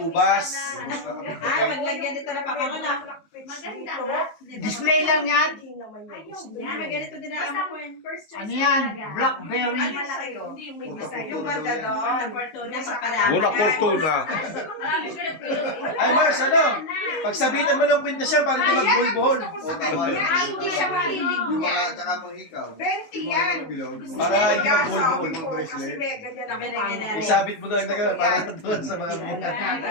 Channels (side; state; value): right; late; 19 ms